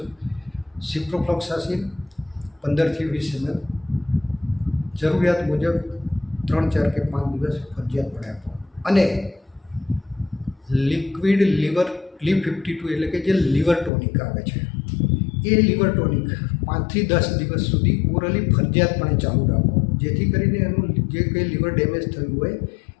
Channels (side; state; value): right; drops out; at 13.9 s